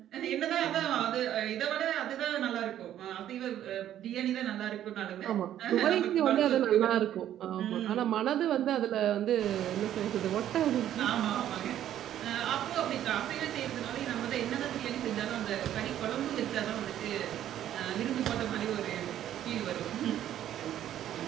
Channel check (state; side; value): quieter; left; 11.5 dB